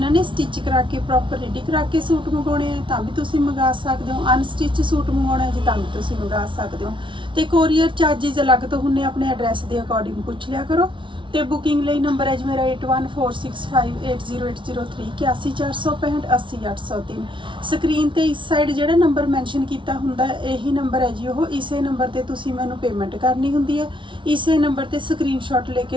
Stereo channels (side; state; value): left; late; 0.24 ms